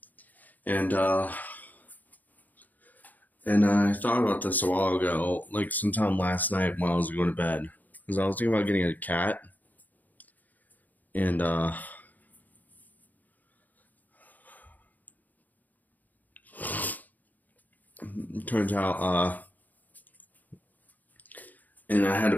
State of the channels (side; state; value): right; late; 0.082 ms